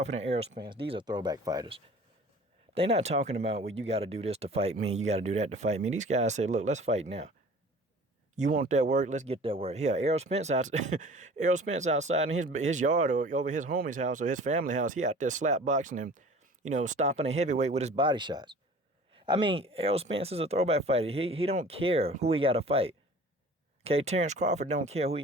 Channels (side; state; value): both; normal; correlation 0.45